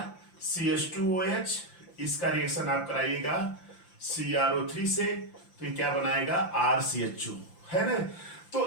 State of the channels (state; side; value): late; right; 5.8 ms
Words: इसका रिएक्शन आप कराइएगा CrO3 से, तो ये क्या बनाएगा RCH2, है ना। तो